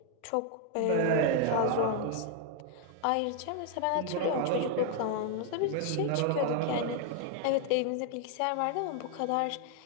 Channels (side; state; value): both; different; correlation 0.00